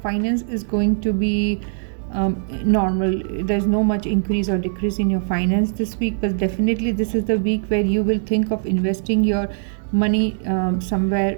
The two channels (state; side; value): silent; left; digital silence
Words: is going to be normal. There's no much increase or decrease in your finance this week, but definitely this is the week where you will think of investing your money